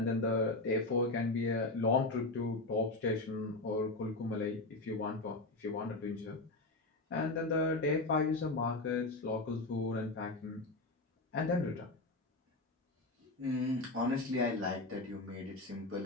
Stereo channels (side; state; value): right; quieter; 3.0 dB